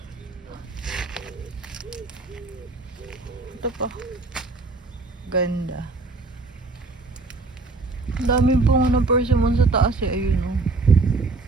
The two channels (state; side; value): quieter; left; 3.6 dB